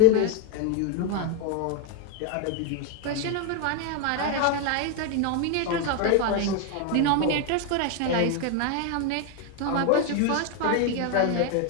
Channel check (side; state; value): both; different; correlation 0.01